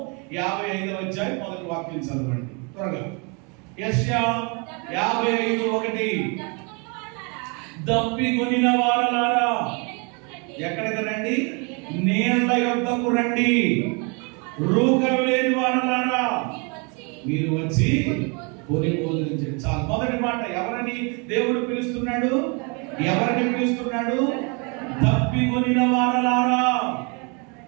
55వ అధ్యాయం మొదటి వాక్యం చదవండి త్వరగా. యెషయా 55:1 దప్పికొనిన వారలారా ఎక్కడికి రండి? నీళ్ల యొద్దకు రండి. రూకలు లేని వారలారా మీరు వచ్చి కొని భోజనించండి. చాలు. మొదటి మాట ఎవరని దేవుడు పిలుస్తున్నాడు? ఎవరిని పిలుస్తున్నాడు? దప్పికొనిన వారలారా,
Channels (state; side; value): quieter; left; 32.8 dB